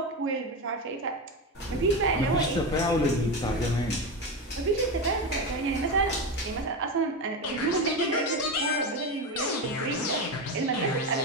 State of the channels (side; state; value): both; normal; correlation 0.17